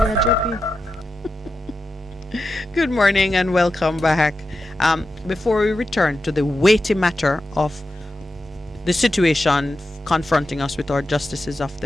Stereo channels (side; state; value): both; normal; correlation 0.90